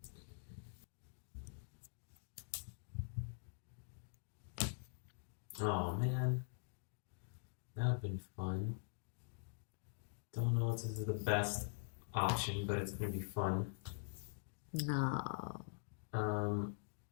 Oh man, that would have been fun. Don't know if this is the best option, but it's gonna be fun. No.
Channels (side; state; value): right; silent; digital silence